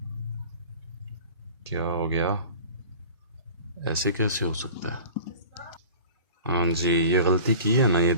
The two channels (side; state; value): both; inverted; correlation -0.40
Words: क्या हो गया, ऐसे कैसे हो सकता है? हाँ जी, ये गलती की है ना, ये